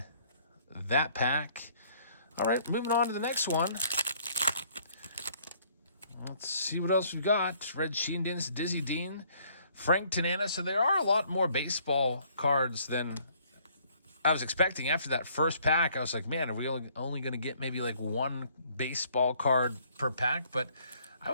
that pack. All right, moving on to the next one. Let's see what else we've got. Red Sheendins, Dizzy Dean, Frank Tanana. So there are a lot more baseball cards than I was expecting. After that first pack, I was like, man, are we only going to get maybe like one baseball card per pack? But I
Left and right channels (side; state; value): both; inverted; correlation -0.62